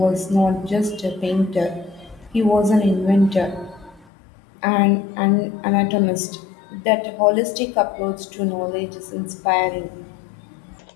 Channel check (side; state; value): right; drops out; at 4.0 s